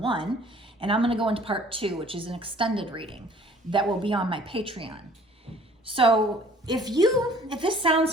and I'm going to go into part 2, which is an extended reading that will be on my Patreon. So if this sounds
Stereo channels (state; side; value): normal; both; correlation 0.53